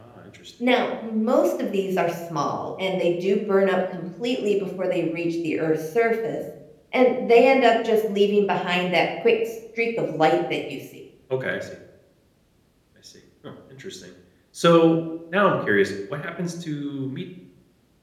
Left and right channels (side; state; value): both; identical; correlation 1.00